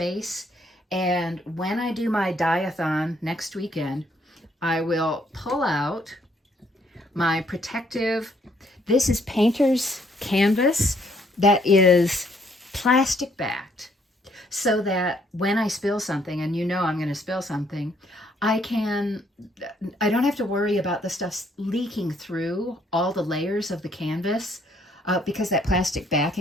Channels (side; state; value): both; normal; correlation 0.68